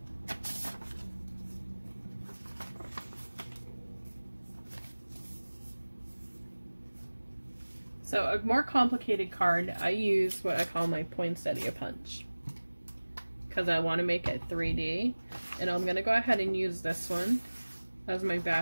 So a more complicated card, I use what I call my poinsettia punch because I want to make it 3D. And I'm going to go ahead and use this one as my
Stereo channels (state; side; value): inverted; both; correlation -1.00